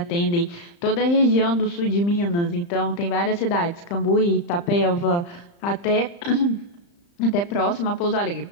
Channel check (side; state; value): right; late; 35 ms